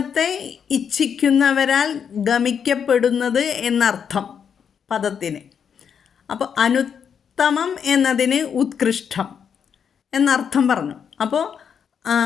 ഇച്ഛിക്കുന്നവരാൽ ഗമിക്കപ്പെടുന്നത് എന്നർത്ഥം പദത്തിന്. അപ്പോൾ അനുത്തമം എന്നതിന് ഉത്കൃഷ്ടം എന്നർത്ഥം പറഞ്ഞു. അപ്പോൾ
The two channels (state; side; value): quieter; right; 7.4 dB